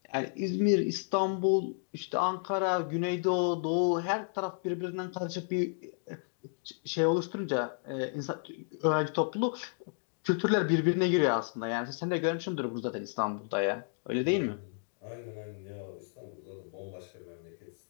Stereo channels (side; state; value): right; silent; digital silence